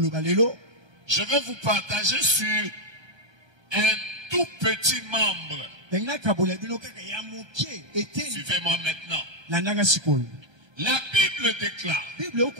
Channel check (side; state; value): left; late; 1.3 ms